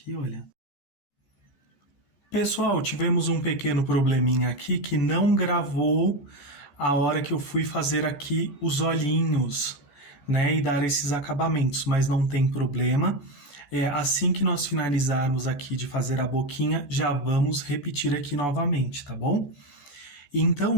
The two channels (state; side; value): late; right; 14 ms